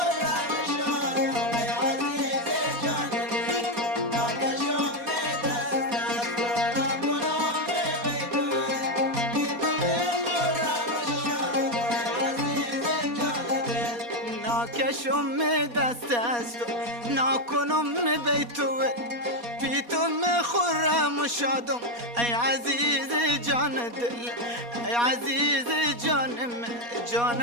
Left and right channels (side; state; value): left; late; 4.2 ms